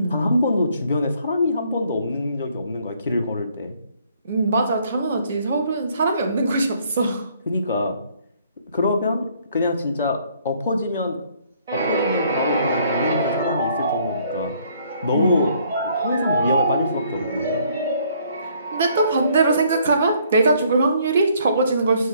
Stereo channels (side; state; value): both; inverted; correlation -0.64